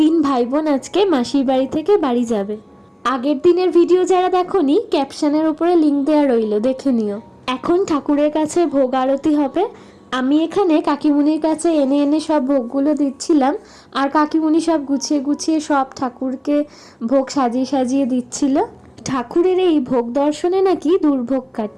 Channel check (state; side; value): identical; both; correlation 1.00